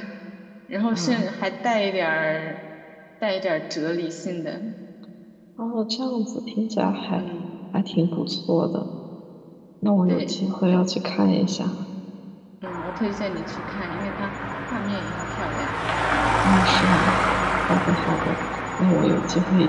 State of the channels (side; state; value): both; identical; correlation 1.00